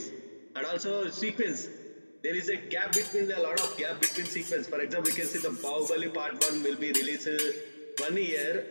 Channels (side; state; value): both; inverted; correlation -1.00